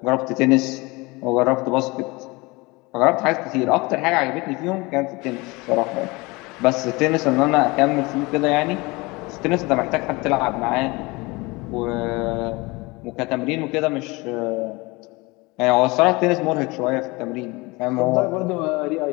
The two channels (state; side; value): quieter; right; 24.3 dB